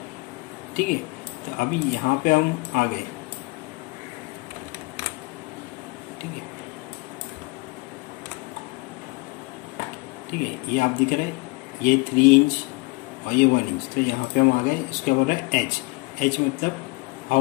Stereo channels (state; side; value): quieter; right; 26.4 dB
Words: ठीक है, तो अभी यहाँ पे हम आ गए। ठीक है, ठीक है, ये आप दिख रहे हैं, ये 3 इंच और ये 1 इंच, तो यहाँ पे हम आ गए। इसके बोल रहा है एच मतलब